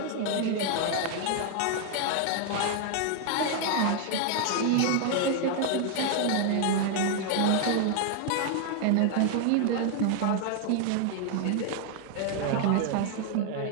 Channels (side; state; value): both; different; correlation 0.00